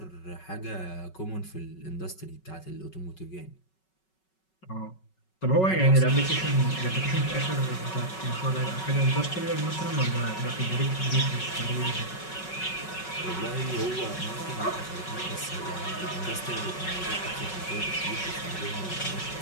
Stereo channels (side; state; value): right; late; 5.3 ms